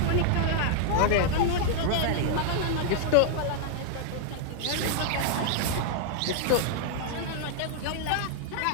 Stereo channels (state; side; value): different; both; correlation 0.00